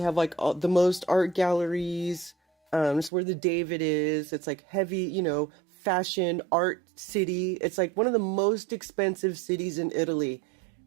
have like the most art galleries. It's where the David is. It's like heavy, you know, fashion art city. It's like one of the most expensive cities in Italy.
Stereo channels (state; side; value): drops out; left; at 3.1 s